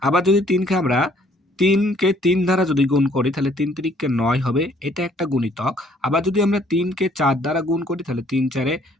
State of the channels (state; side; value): normal; both; correlation 0.62